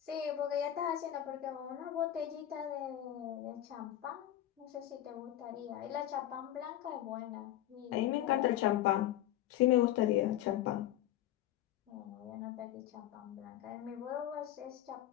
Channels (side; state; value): right; quieter; 12.8 dB